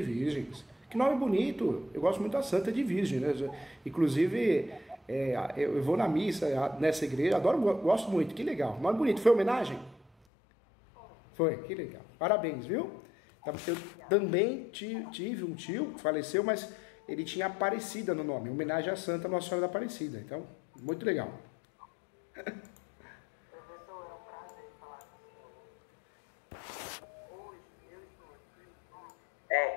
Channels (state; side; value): drops out; right; at 10.1 s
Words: Virgens. Que nome bonito. Eu gosto muito da Santa de Virgem, né? Inclusive, eu vou na missa nessa igreja, adoro, gosto muito. Que legal. Nome bonito. Foi homenagem? Foi, que legal. Parabéns, viu? Eu também tive um tio que faleceu, mas ele tinha Aparecida no nome, em homenagem à Santa Nossa Senhora da Aparecida. Então, muito legal. Professor, é um prazer falar com o senhor. Hoje eu estou